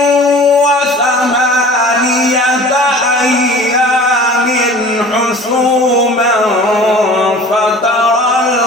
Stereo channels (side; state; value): both; normal; correlation 0.43